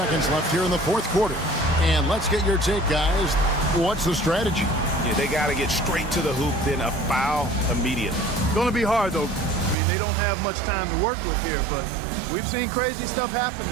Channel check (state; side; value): drops out; left; at 9.8 s